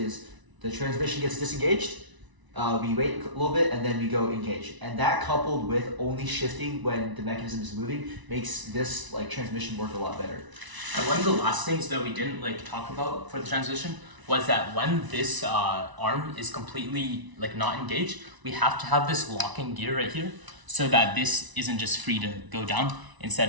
the transmission gets disengaged, we wait a little bit, and then we go engage. And that coupled with only shifting when the mechanism is moving makes this like transmission work a lot better. And one of the last things that we didn't like talk about for the transmission was that when this arm is completely like not engaged, we have to have this locking gear right here so that this isn't just free to go down.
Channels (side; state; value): left; late; 1.0 ms